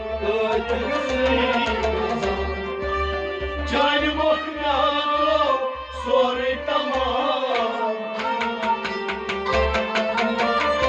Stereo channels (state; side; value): identical; both; correlation 1.00